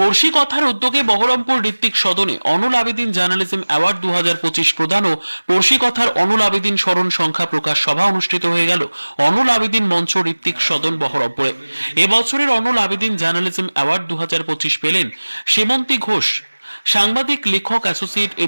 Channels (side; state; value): both; inverted; correlation -1.00